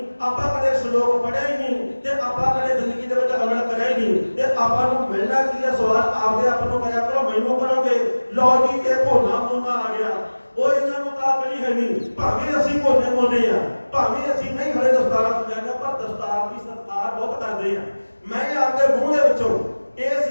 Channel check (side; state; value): both; inverted; correlation -1.00